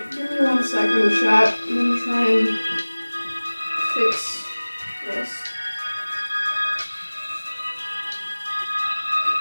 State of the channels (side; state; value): both; inverted; correlation -1.00